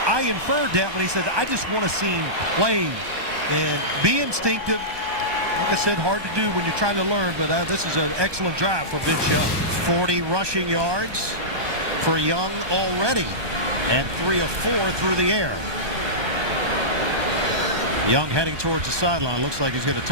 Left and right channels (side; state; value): left; late; 1.2 ms